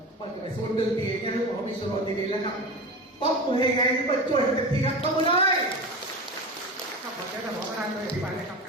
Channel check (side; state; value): both; normal; correlation 0.27